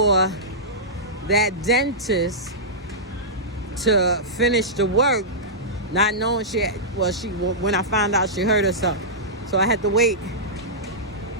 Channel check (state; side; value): normal; both; correlation -0.14